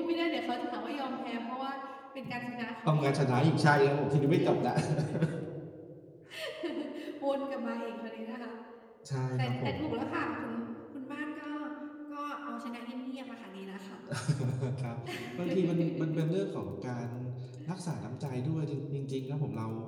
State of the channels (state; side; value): identical; both; correlation 1.00